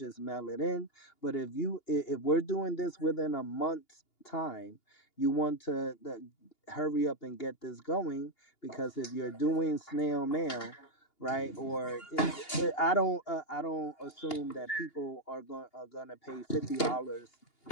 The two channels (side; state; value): right; late; 2.8 ms